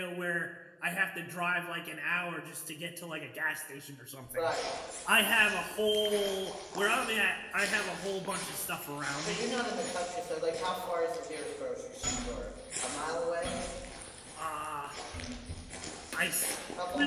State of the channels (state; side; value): identical; both; correlation 1.00